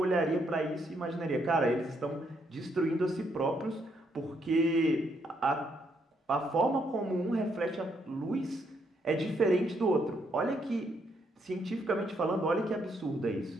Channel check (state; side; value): normal; both; correlation 0.74